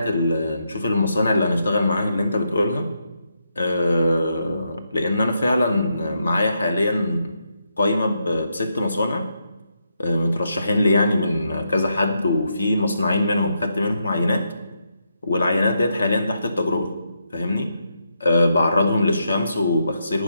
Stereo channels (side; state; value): both; inverted; correlation -0.81